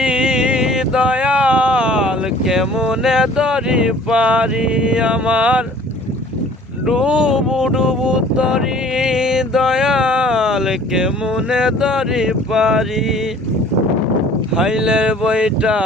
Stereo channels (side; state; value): both; normal; correlation 0.51